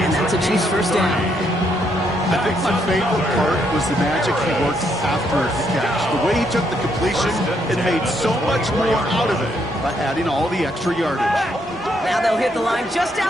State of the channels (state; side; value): normal; both; correlation 0.74